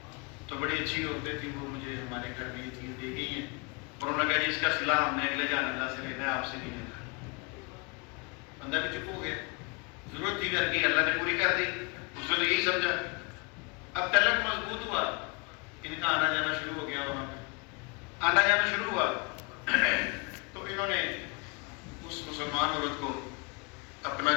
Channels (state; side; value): quieter; right; 32.1 dB